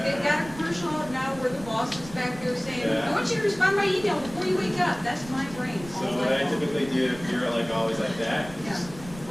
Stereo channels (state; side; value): noise; right; rumble, 16 dB below the sound